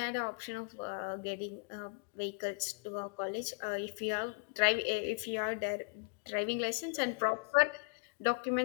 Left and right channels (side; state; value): right; quieter; 36.2 dB